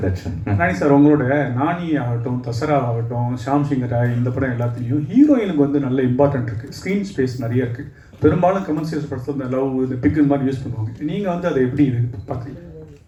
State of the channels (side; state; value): both; identical; correlation 1.00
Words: that show. Nani sir, உங்களோட நானி ஆகட்டும், தசரா ஆகட்டும், ஷாம் சிங்கராய், இந்த படம் எல்லாத்துலேயும் ஹீரோயினுக்கு வந்து நல்ல important இருக்குது, ஸ்க்ரீன் ஸ்பேஸ் நிறைய இருக்குது. பெரும்பாலும் கமர்ஷியல்ஸ் படத்தில் இந்த லவ் இந்த பிக்கு மாதிரி யூஸ் பண்ணுவாங்க. நீங்கள் வந்து அதை எப்படி பார்க்குறீங்க?